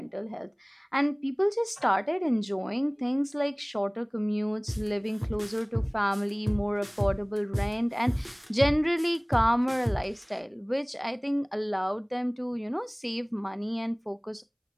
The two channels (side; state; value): both; identical; correlation 1.00